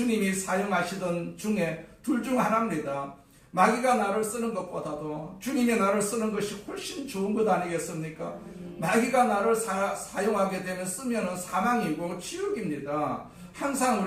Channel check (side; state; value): both; identical; correlation 1.00